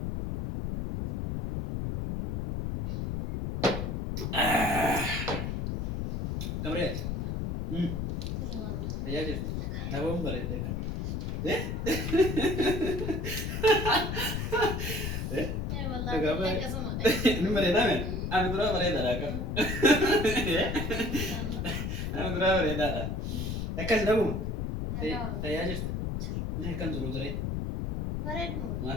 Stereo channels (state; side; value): noise; left; rumble, 2 dB below the sound